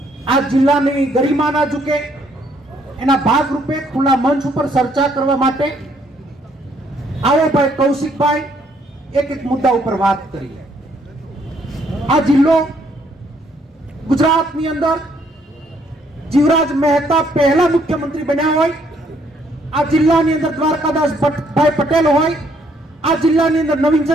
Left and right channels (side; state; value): both; normal; correlation 0.68